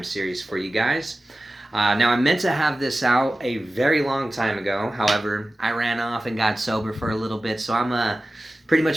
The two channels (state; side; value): normal; both; correlation 0.95